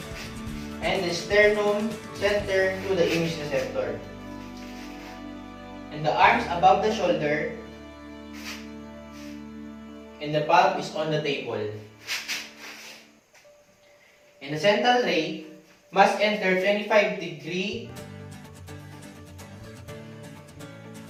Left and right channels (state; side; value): identical; both; correlation 1.00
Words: and the sternum center to the image receptor. And the arms above the shoulder and the palm is on the table. And the central ray must enter 25-degree